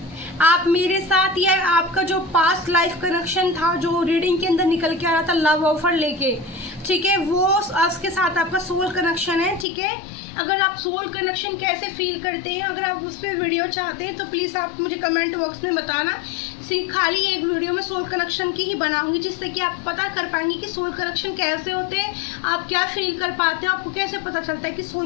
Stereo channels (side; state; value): right; drops out; at 9.7 s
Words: आप मेरे साथ, या आपका जो पास्ट लाइफ कनेक्शन था जो रीडिंग के अंदर निकल के आ रहा था लव ऑफर लेके, ठीक है, वो उसके साथ आपका सोल कनेक्शन है, ठीक है। अगर आप सोल कनेक्शन कैसे फील करते हैं, अगर आप उस पर वीडियो चाहते हैं तो प्लीज़ आप मुझे कमेंट बॉक्स में बताना। खाली एक वीडियो में सोल कनेक्शन की ही बनाऊंगी, जिससे कि आप पता कर पाएंगे कि सोल कनेक्शन कैसे होते हैं, आप क्या फील कर पाते हो, आपको कैसे पता चलता है कि